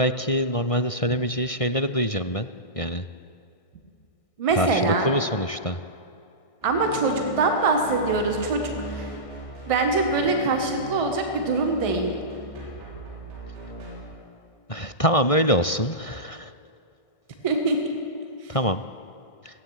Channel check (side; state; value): right; late; 1.6 ms